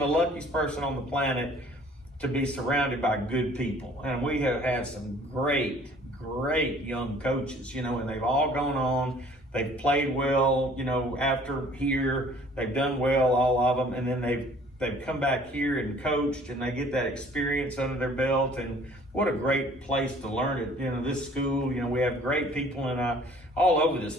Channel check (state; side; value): normal; both; correlation 0.54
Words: luckiest person on the planet to be surrounded by good people. And we have had some great young coaches, and they've all gone on. They've played well, after here. They've done well, all of them. And then they've come back here and coached, and they get that experience under their belt. And what a great place to learn it. This school, we have great people all over this